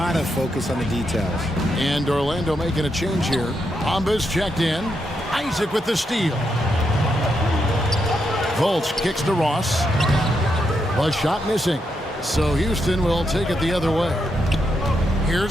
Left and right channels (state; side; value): normal; both; correlation 0.82